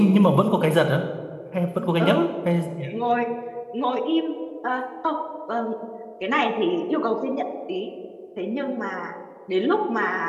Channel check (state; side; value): identical; both; correlation 1.00